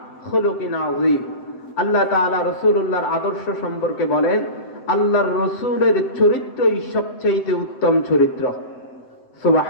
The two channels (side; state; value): right; late; 7.8 ms